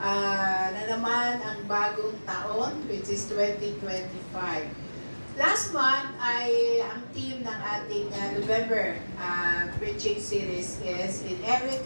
naman ang bagong taon, which is 2025. Last month ay ang theme ng ating November preaching series is In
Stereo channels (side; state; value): both; inverted; correlation -1.00